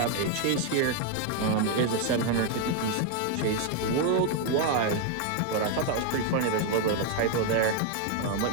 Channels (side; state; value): both; different; correlation 0.01